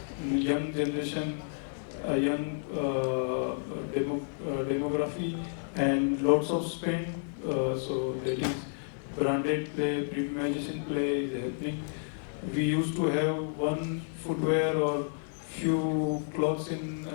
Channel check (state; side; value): silent; right; digital silence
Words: Young generation, young demography, and lots of spend. So that is branded play, premiumization play is happening. We used to have one footwear or few clothes in